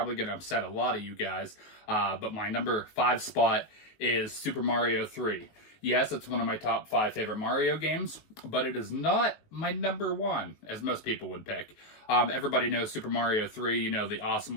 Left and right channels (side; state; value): right; late; 19 ms